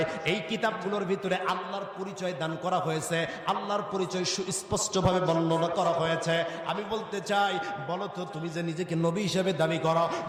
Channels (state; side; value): identical; both; correlation 1.00